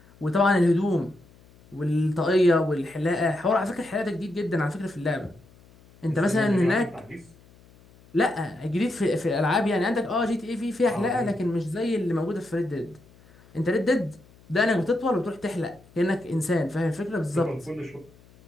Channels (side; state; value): left; noise; hum, 27 dB below the sound